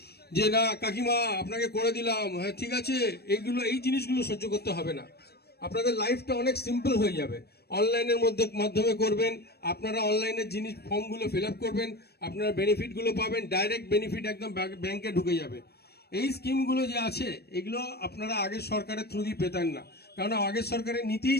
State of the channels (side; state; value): right; late; 0.47 ms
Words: যে না কাকিমা আপনাকে করে দিলাম, হ্যাঁ ঠিক আছে, এই জিনিসগুলো সহ্য করতে হবে না। আপনাদের লাইফটা অনেক সিম্পল হয়ে যাবে। অনলাইনের মাধ্যমে করবেন, আপনারা অনলাইনের জিনিস ফর্মগুলো ফিল আপ করবেন, আপনারা বেনিফিটগুলো পাবেন, ডাইরেক্ট বেনিফিট একদম ব্যাংকে ঢুকে যাবে। এই স্কিমগুলো যে আছে এগুলো আপনারা আগের সরকারের থ্রু দিয়ে পেতেন না, কারণ আগের সরকারের